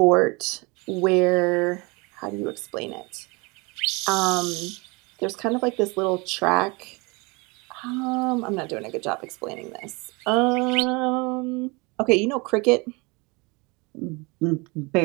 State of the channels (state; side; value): quieter; left; 27.2 dB